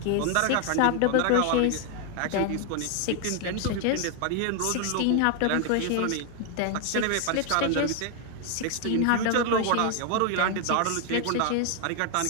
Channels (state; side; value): different; both; correlation 0.00